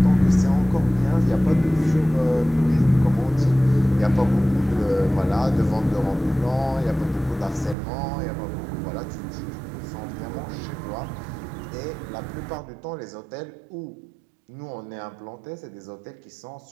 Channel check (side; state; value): left; drops out; at 7.8 s